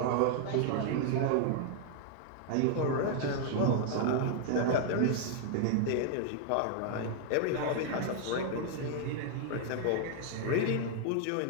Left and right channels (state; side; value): different; both; correlation 0.00